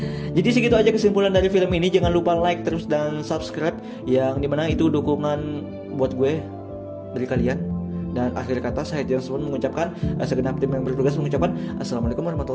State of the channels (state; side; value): identical; both; correlation 1.00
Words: Jadi segitu aja kesimpulan dari film ini. Jangan lupa like terus dan subscribe, yang dimana itu dukungan buat gue dari kalian. Dan akhir kata saya James Bond mengucapkan, segenap tim yang bertugas mengucapkan Assalamualaikum